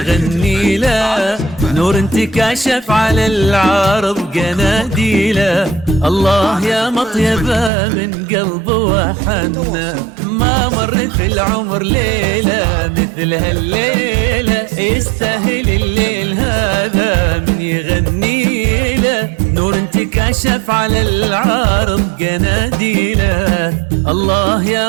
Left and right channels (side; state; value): left; drops out; at 7.7 s